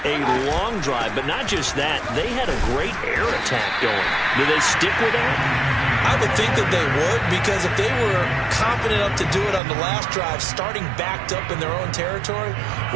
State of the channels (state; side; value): drops out; left; at 9.6 s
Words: a long drive, but not just that, they had a great air attack going. Do they stick with that? I would think that they would, because if they were confident enough to do it on the last drive, starting backed up in their own territory,